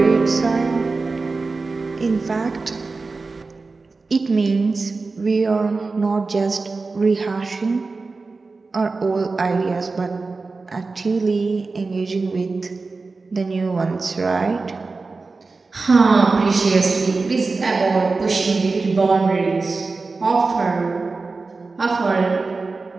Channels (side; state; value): left; quieter; 3.9 dB